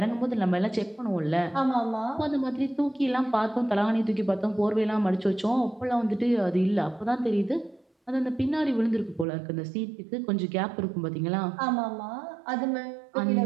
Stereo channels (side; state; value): left; drops out; at 9.2 s